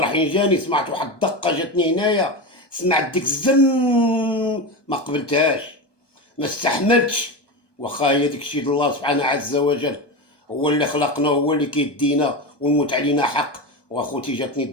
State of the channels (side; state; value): right; late; 1.2 ms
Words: حين جاني سمعت واحد الدقه جاتني هنايا، سمعت ديك الزن ما قبلتهاش، ما استحملتش. واخا هي ديك الشيء الله سبحانه عز وجل هو اللي خلقنا، هو اللي كيدينا والموت علينا حق. واخوتي جاتني